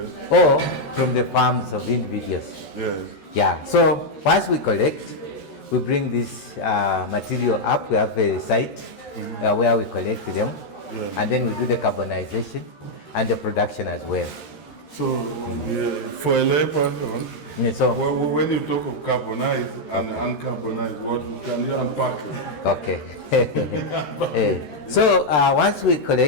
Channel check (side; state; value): right; late; 13 ms